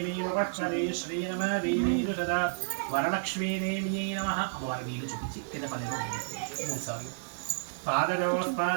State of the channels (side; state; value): left; silent; digital silence